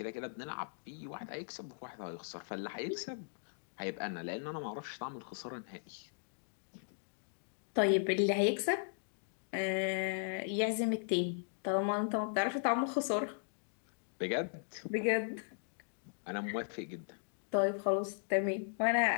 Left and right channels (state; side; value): silent; right; digital silence